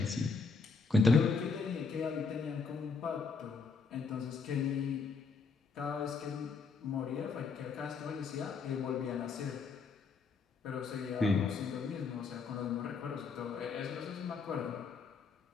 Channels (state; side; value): quieter; right; 4.8 dB